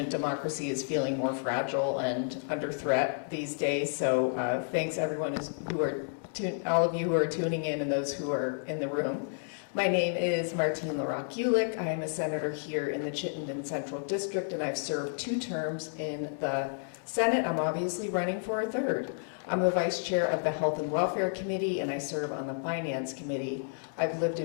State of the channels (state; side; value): silent; right; digital silence